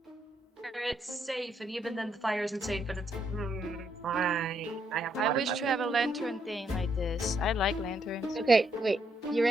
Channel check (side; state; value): both; normal; correlation 0.76